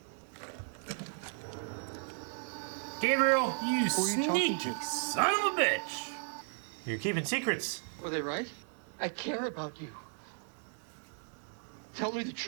Gabriel, you Who are you talking sneaky to? son of a bitch! You're keeping secrets. Were they right? I care about you. Tell me the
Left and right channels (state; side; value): silent; left; 54 dB below the other